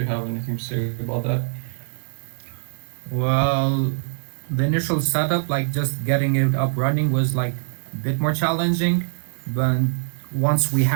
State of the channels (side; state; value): left; silent; digital silence